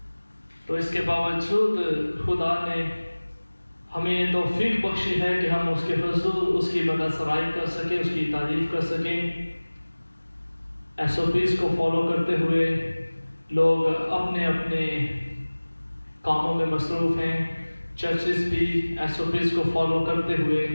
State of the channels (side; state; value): both; inverted; correlation -1.00